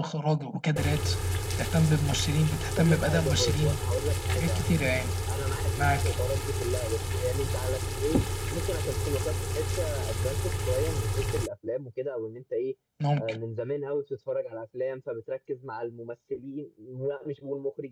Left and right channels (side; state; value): both; identical; correlation 1.00